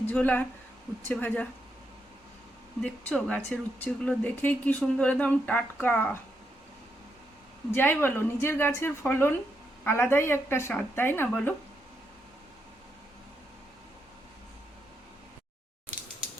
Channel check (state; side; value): normal; both; correlation 0.81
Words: ঝোল আর উচ্ছে ভাজা দেখছো গাছের উচ্ছেগুলো দেখেই কি সুন্দর, একদম টাটকা। যাই বলো, নিজের গাছের ফলন আলাদাই একটা স্বাদ, তাই না বলো?